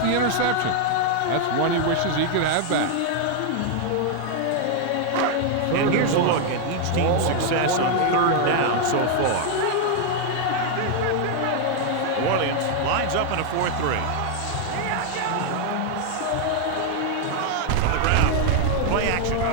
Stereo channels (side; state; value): both; different; correlation 0.00